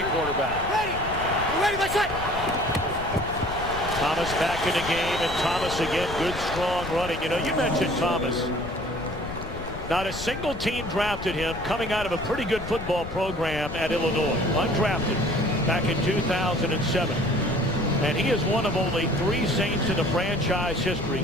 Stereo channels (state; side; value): noise; left; rumble, 9 dB below the sound